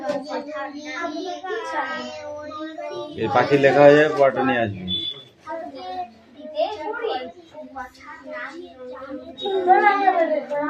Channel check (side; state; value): both; identical; correlation 1.00